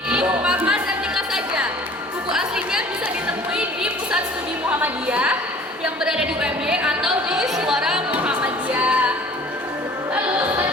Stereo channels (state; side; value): normal; both; correlation 0.50